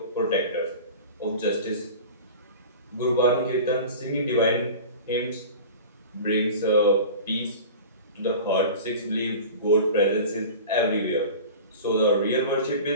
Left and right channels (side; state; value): both; inverted; correlation -0.36